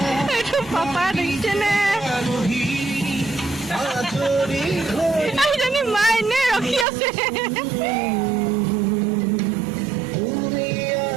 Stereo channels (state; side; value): drops out; left; at 6.9 s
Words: এইটো পাপা দেখিছেনে এইজনী মা এনে ৰখি আছে